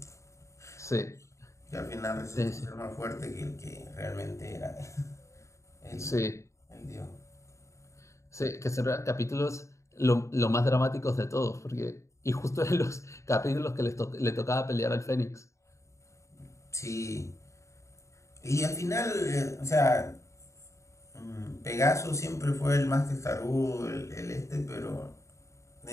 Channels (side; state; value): right; late; 0.14 ms